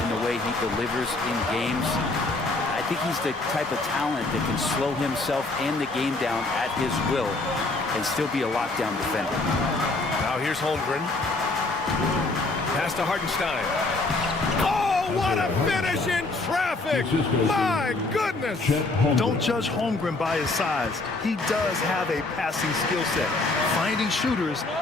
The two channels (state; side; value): quieter; right; 3.2 dB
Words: in the way he delivers in games? I think think he's the type of talent that can slow himself and the game down at his will and still be a lockdown defender. Now here's Holmgren. Pass to Hartenstein. Oh, what a finish in traffic! My goodness! Don't judge Holmgren by his size. He does have a passing skill set, finding shooters